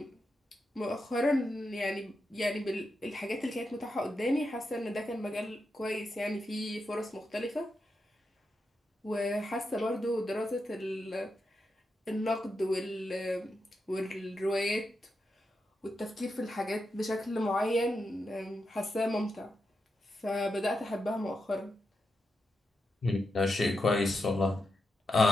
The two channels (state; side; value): normal; both; correlation 0.86